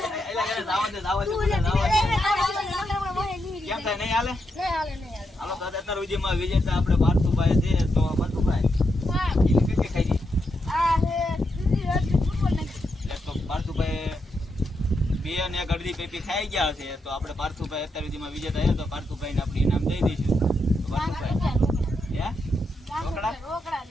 કેમ થાય નહીં હાલે? હાલો તો અત્યાર સુધીમાં વિજેતા આપણે પાર્થુભાઈ છે. તો પાર્થુભાઈ કઈ ખાઈ ગઈ તો પાર્થુભાઈ 2 અને 1 અડધી પેપી ખાઈ ગયા છે. તો આપણે પાર્થુભાઈ અત્યાર સુધીમાં વિજેતા છે. તો પાર્થુભાઈને આપણે ઇનામ દઈ દઈશું. તો પાર્થુભાઈ હે રોકડા?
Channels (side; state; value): both; normal; correlation 0.83